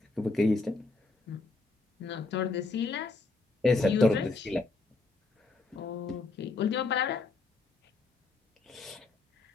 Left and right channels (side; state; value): right; quieter; 3.6 dB